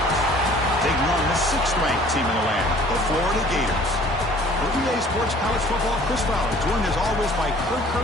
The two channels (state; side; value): normal; both; correlation 0.52